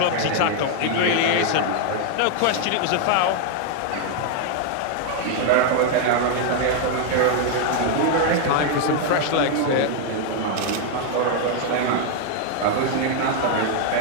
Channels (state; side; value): different; both; correlation 0.00